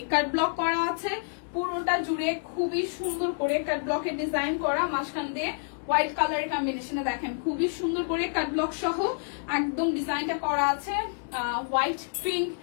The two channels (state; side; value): silent; right; digital silence